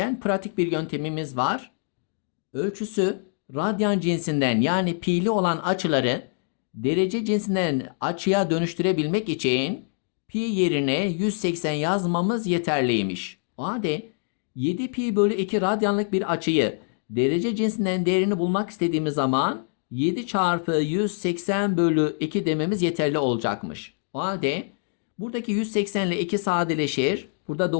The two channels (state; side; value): silent; right; 62 dB below the other